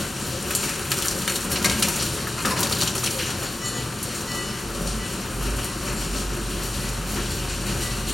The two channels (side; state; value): both; normal; correlation 0.94